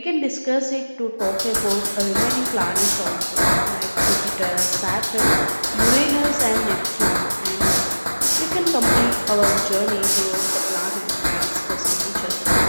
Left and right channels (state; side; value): inverted; both; correlation -1.00